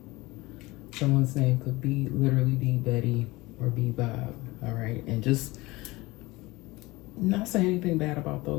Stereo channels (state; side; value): quieter; right; 21.2 dB